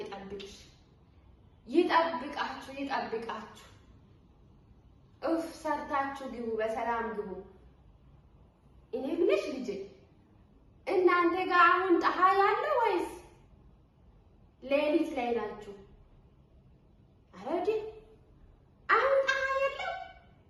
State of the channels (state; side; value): identical; both; correlation 1.00